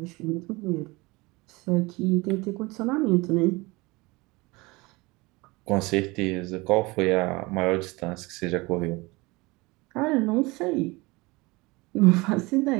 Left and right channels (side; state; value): left; quieter; 23.8 dB